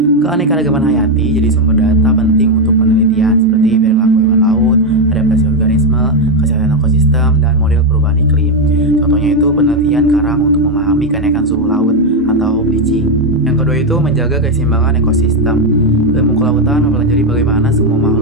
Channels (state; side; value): normal; both; correlation 0.05